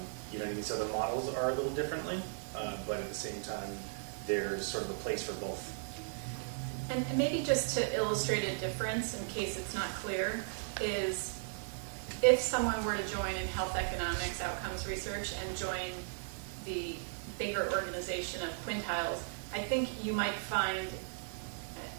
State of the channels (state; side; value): silent; left; 53 dB below the other